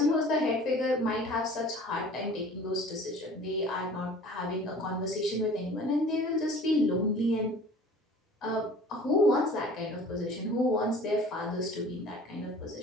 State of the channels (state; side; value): normal; both; correlation 0.46